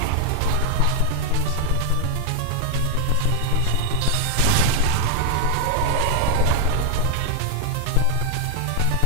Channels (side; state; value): both; different; correlation 0.00